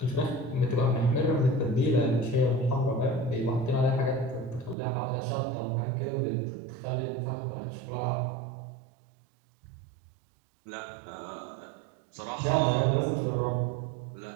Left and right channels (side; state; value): left; drops out; at 4.8 s